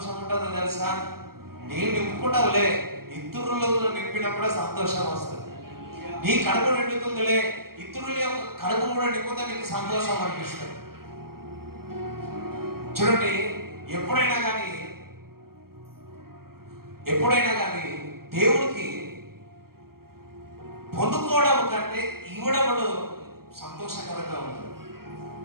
ఉంటుందో తెలుసా? నేను నింపుకుంటావులే, ఇతరులు నింపినప్పుడే సంతోషం వస్తుంది. నీ కడుపు నిండుతుందిలే, ఇతరుల యొక్క కడుపు కూడా నింపుతే నీకు సంతోషం అనిపిస్తుంది. చూడండి, ఎప్పుడైనా కానీ దేవుడికి పొందుకోవడం కంటే ఇవ్వడం సంతోషకరంగా ఉంటుంది.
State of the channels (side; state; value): left; late; 0.93 ms